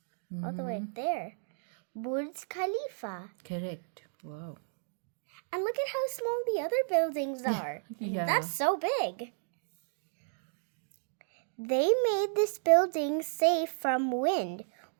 All the way up there. Burj Khalifa. Correct. Wow. And look at how small the other buildings are. Yeah. That's so big. They made this building safe from wind.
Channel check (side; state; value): left; silent; digital silence